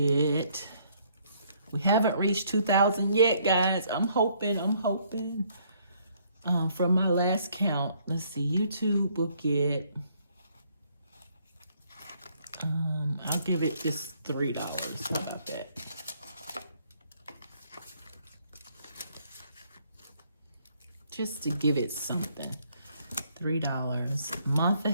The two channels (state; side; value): inverted; both; correlation -0.67